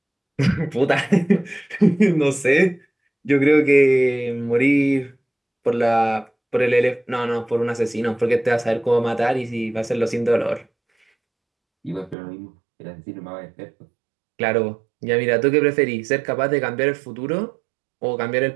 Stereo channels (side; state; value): left; drops out; at 12.2 s